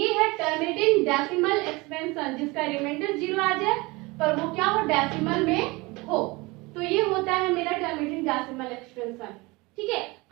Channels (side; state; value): left; quieter; 24.0 dB